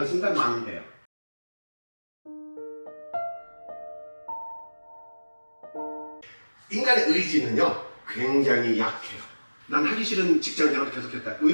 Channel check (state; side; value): inverted; both; correlation -1.00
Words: 순간 망해요. 인간의 의지는요 굉장히 약해요. 난 하기 싫은 직장 생활을 계속했다, 뭐